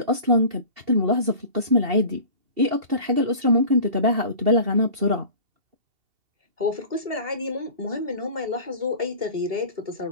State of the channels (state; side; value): late; left; 2.7 ms